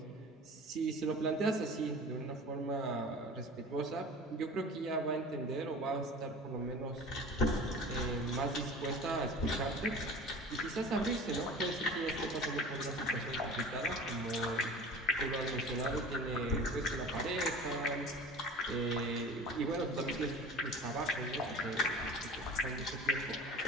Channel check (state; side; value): normal; both; correlation 0.39